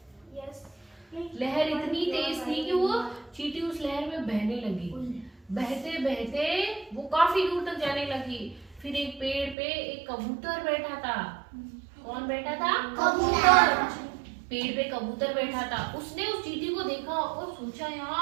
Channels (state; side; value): drops out; left; at 9.6 s